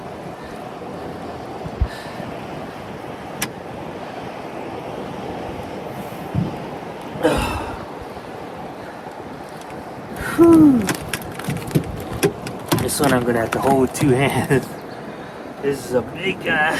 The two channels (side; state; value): both; identical; correlation 1.00